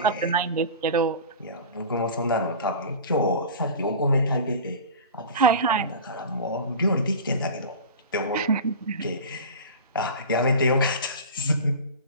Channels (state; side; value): inverted; both; correlation -0.33